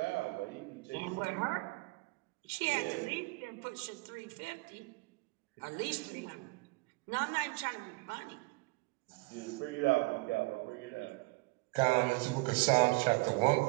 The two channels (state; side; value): quieter; left; 26.5 dB